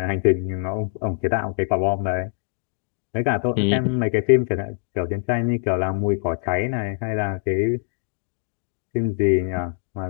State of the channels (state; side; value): silent; right; digital silence